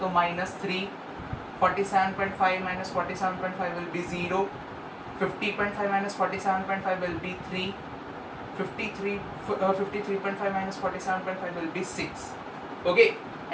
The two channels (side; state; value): both; identical; correlation 1.00